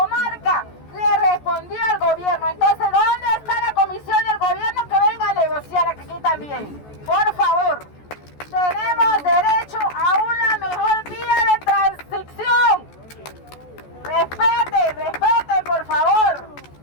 le respondió al gobierno. Entonces, ¿dónde está la comisión del gobierno que venga a negociar aquí también? Por favor, tenemos derecho a una mejor vía de transición. Respeten, por favor.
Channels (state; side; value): late; right; 14 ms